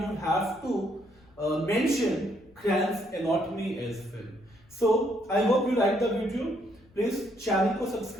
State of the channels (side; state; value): left; noise; rumble, 29 dB below the sound